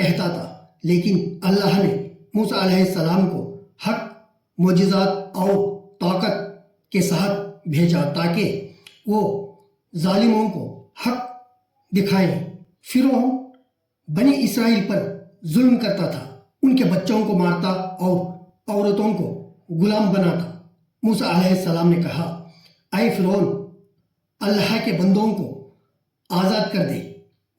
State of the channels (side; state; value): both; identical; correlation 1.00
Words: تھا، لیکن اللہ نے موسیٰ علیہ السلام کو حق، معجزات اور طاقت کے ساتھ بھیجا تاکہ وہ ظالموں کو حق دکھائیں۔ فرعون بنی اسرائیل پر ظلم کرتا تھا، ان کے بچوں کو مارتا اور عورتوں کو غلام بناتا۔ موسیٰ علیہ السلام نے کہا، اے فرعون، اللہ کے بندوں کو آزاد کر دے